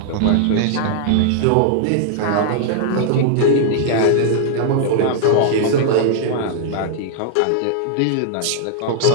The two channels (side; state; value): both; different; correlation -0.01